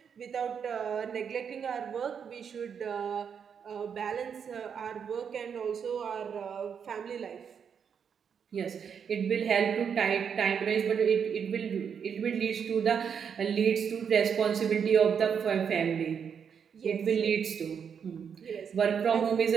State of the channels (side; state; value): left; quieter; 7.2 dB